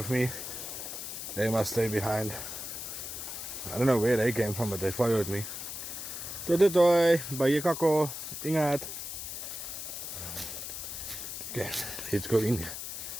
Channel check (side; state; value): left; noise; hiss, 7 dB below the sound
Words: me. They must stay behind. I don't know where they came from, but they followed me. Toi, toi, toi. Baie kako. Ingat. Okay, let's go in.